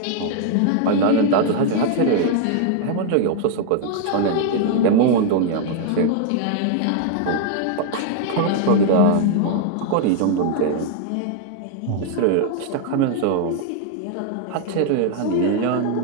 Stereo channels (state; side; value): different; both; correlation 0.00